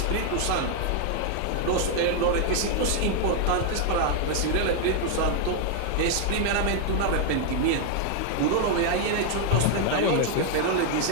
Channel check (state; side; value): different; both; correlation 0.00